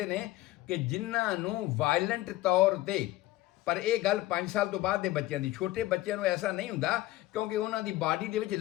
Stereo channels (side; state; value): right; quieter; 16.7 dB